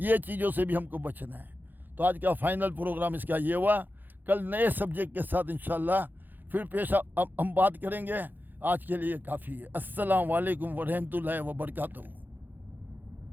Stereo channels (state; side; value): late; left; 0.088 ms